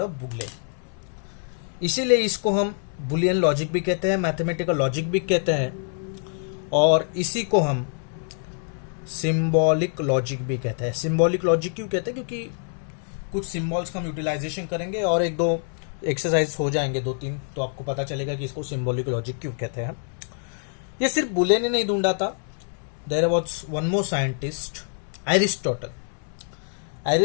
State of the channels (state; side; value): silent; right; 61 dB below the other